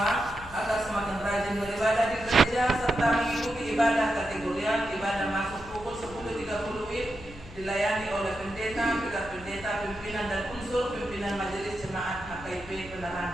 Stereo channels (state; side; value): noise; left; hum, 17 dB below the sound